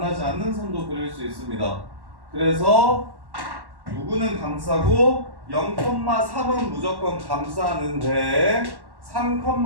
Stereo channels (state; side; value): late; left; 1.1 ms